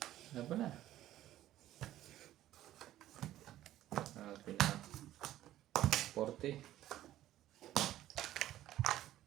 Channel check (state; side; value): quieter; left; 13.6 dB